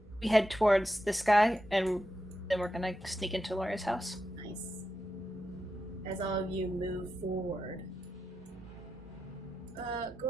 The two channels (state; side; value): normal; both; correlation 0.88